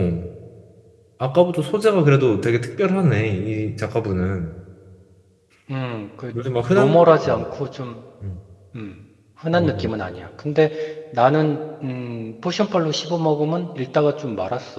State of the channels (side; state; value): both; identical; correlation 1.00